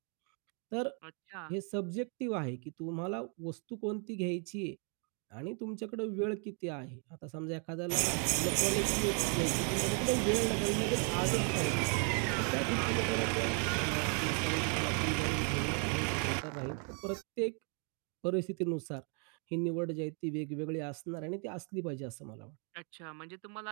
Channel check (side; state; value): left; quieter; 39.6 dB